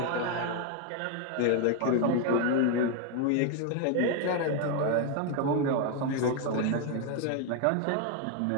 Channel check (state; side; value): different; both; correlation 0.01